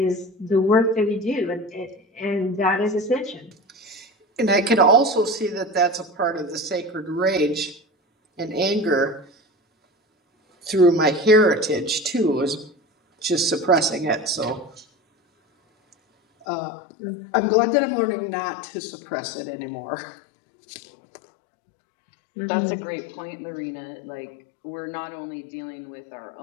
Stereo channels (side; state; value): right; drops out; at 16.4 s